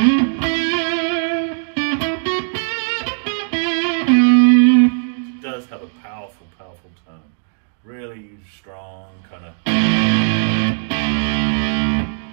powerful, powerful tone. Really strong, kind of.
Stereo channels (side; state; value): left; silent; digital silence